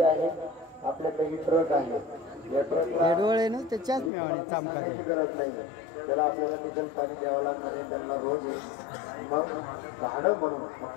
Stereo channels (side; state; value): right; drops out; at 4.1 s